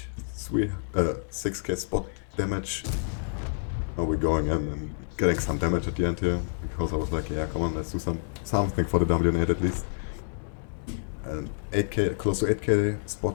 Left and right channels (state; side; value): silent; right; digital silence